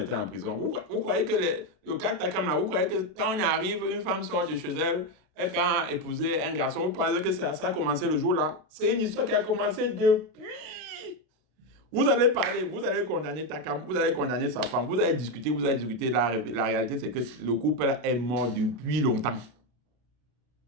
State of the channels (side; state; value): left; late; 32 ms